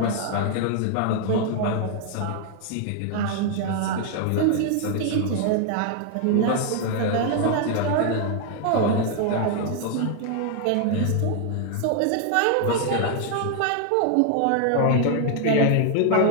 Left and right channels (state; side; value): different; both; correlation 0.00